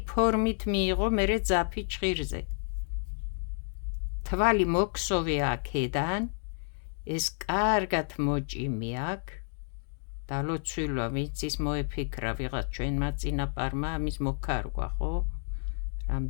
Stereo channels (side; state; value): right; silent; digital silence